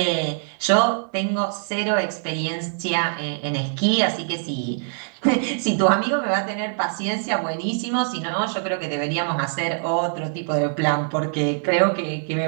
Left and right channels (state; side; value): silent; left; 63 dB below the other